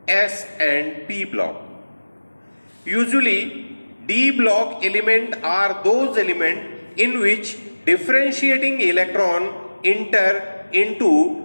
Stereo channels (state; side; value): inverted; both; correlation -1.00